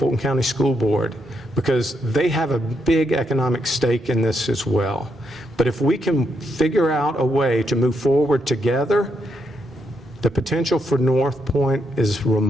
County School Board, because they have a big economic stake in this as well. But if we can figure out a way to move forward together, the potential for North Point is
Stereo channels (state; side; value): normal; both; correlation 0.79